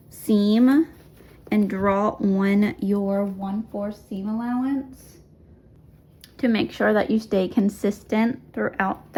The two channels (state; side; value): identical; both; correlation 1.00